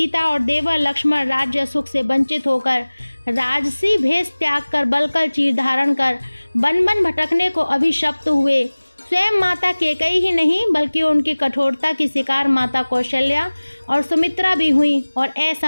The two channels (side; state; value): both; inverted; correlation -1.00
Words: और देवर लक्ष्मण राज्य सुख से वंचित होकर राजसी भेष त्याग कर बलकल चीर धारण कर बन बन भटकने को अभिशप्त हुए। स्वयं माता कैकेयी ही नहीं बल्कि उनकी कठोरता की शिकार माता कौशल्या और सुमित्रा भी हुई और